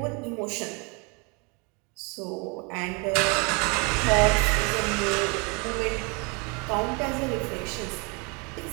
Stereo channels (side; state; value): left; quieter; 31.5 dB